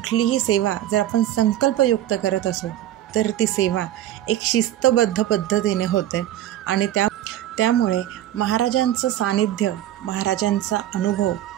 सेवा जर आपण संकल्पयुक्त करत असू तर ती सेवा एक शिस्तबद्ध पद्धतीने होते आणि त्यामुळे महाराजांचं सानिध्य, महाराजांचा अनुभव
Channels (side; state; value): left; quieter; 12.8 dB